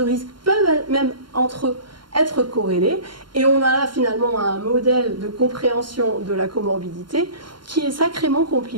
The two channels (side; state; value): left; late; 0.72 ms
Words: risque peuvent même entre eux être corrélés et on a là finalement un modèle de compréhension de la comorbidité qui est sacrément